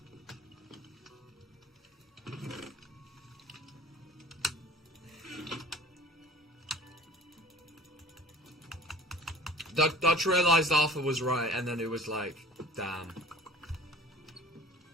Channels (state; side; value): normal; both; correlation 0.45